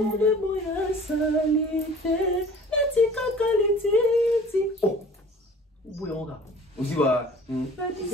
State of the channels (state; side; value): normal; both; correlation 0.47